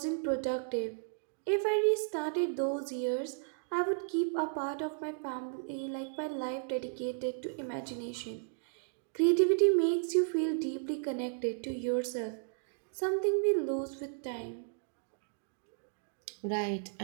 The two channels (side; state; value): left; silent; digital silence